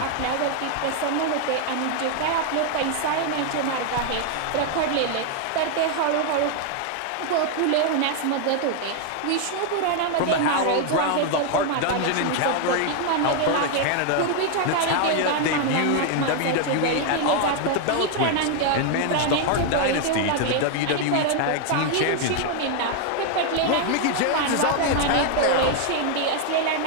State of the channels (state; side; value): different; both; correlation 0.00